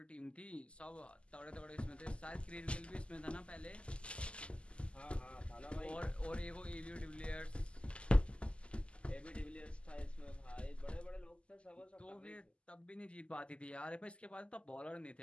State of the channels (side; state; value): right; late; 0.054 ms